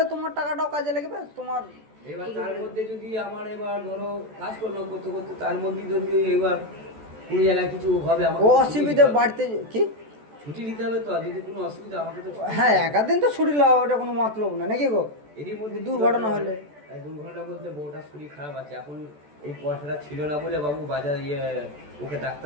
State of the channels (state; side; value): late; left; 14 ms